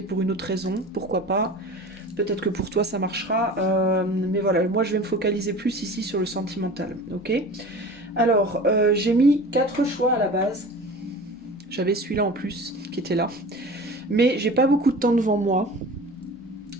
pour une autre raison, pourquoi pas? Peut-être que pour toi ça marchera. Mais voilà, moi je vais me focaliser plus ici sur le sentimental. Ok? Alors, j'ai mis 4 choix à la base. J'avais celui-là en plus qui était là. Mais j'ai pas beaucoup de temps devant moi.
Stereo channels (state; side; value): normal; both; correlation 0.38